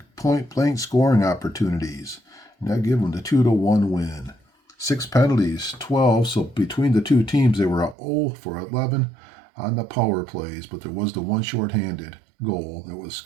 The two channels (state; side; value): drops out; left; at 8.0 s